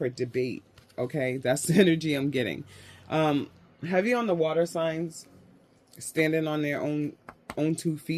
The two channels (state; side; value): identical; both; correlation 1.00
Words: debate, okay? That's the energy I'm getting. Heavy on the water signs, standing on their own 2